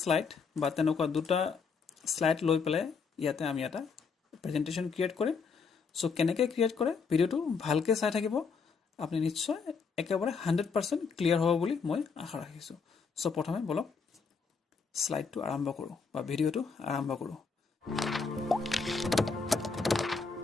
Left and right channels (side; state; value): right; quieter; 5.2 dB